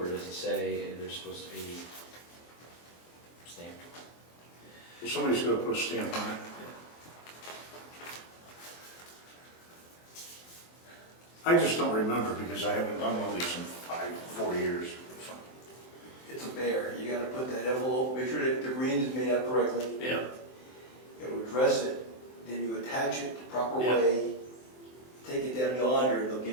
Does it say they're supposed to be stamped? Well, somebody's gotta put a stamp on it. I just don't remember because I haven't done one of these in 4 years. It's a bear. You gotta put that envelope, make sure that the green is made out correctly. yeah, You gotta address it, then you attach it the proper Yeah. way. Take it down yonder, and they'll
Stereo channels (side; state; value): right; late; 23 ms